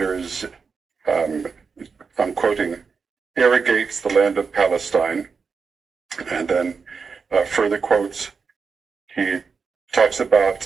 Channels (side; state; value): left; quieter; 5.3 dB